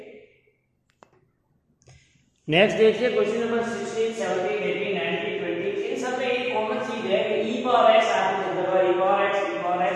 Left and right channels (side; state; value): both; identical; correlation 1.00